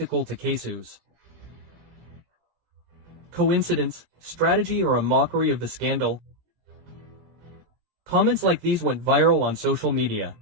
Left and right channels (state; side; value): late; left; 19 ms